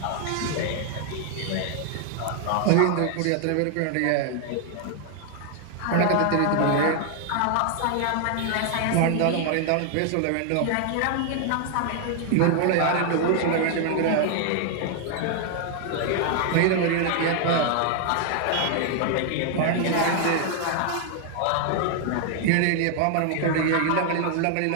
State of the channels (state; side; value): different; both; correlation 0.00